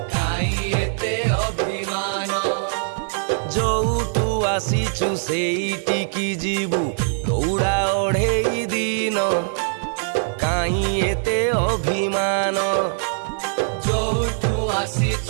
কাই এতে অভিমান। যৌটু আসিছু সেইটিকি ଯିବୁ দৌড়া অঢ়েই দিন কাই এতে অভিমান। ଯୋଉଠୁ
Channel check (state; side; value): silent; left; 63 dB below the other